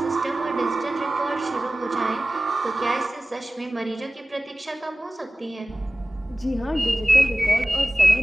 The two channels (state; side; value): normal; both; correlation 0.97